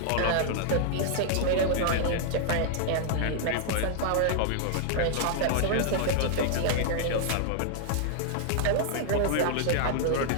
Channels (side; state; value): both; different; correlation -0.01